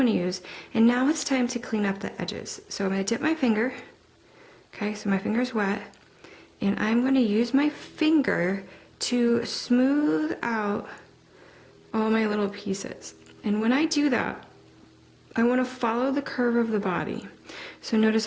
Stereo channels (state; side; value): identical; both; correlation 1.00